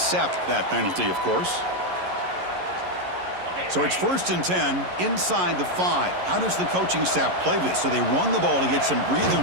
that penalty, of course. So it's 1st and 10 inside the 5. How does the coaching staff play this? So they run the ball to get some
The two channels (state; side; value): late; left; 11 ms